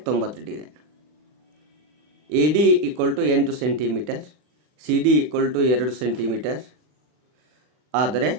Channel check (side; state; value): left; late; 40 ms